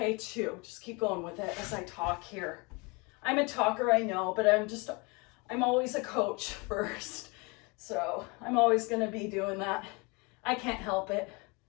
too. Just keep going with it as I talk here. I'm a talker, I know, but I'm always a coach first. So I'm always gonna be doing that. I can't help it.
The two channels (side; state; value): right; quieter; 28.8 dB